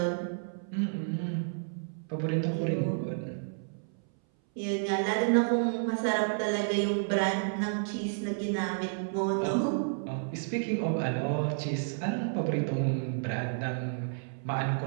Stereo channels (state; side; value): silent; left; 57 dB below the other